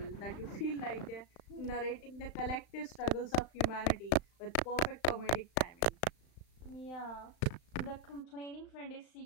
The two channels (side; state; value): right; late; 35 ms